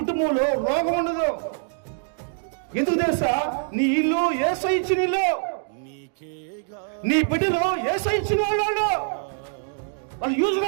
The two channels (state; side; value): silent; left; digital silence